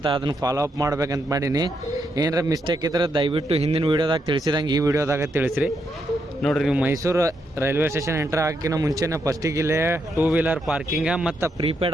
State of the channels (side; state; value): both; normal; correlation 0.80